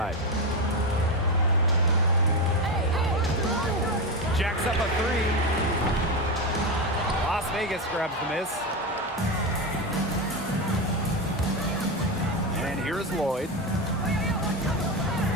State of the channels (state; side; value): normal; both; correlation 0.14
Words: Jacks up a 3. Las Vegas grabs the miss. And here's Lloyd.